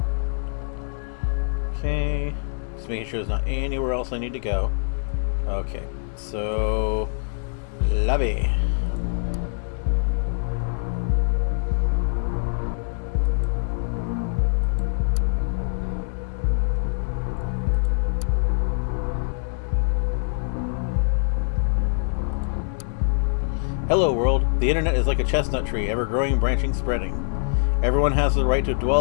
Okay, just making sure there's not anywhere else I need to go. Okay, so lobby. Hello world, the internet is like a chestnut tree, ever growing, branching, spreading. Everyone has the right to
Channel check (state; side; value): silent; right; 62 dB below the other